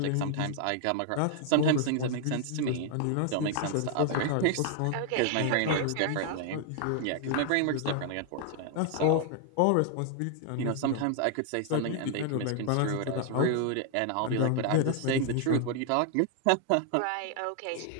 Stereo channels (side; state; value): both; different; correlation 0.00